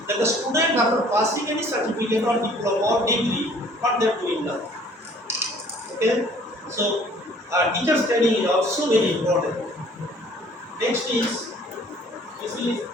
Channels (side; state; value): both; normal; correlation 0.55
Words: That the student after passing any certificate or diploma or degree, what they are doing now. Okay, so teacher's training is also very important. Next is this is